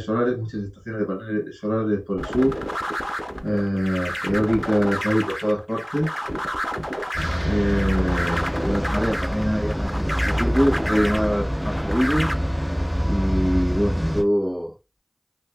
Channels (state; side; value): identical; both; correlation 1.00